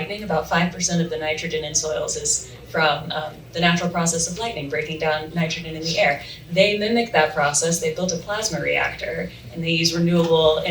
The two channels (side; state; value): both; identical; correlation 1.00